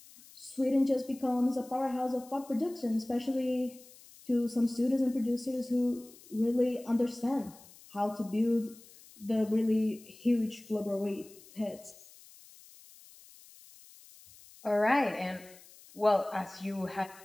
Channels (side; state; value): left; noise; hiss, 22 dB below the sound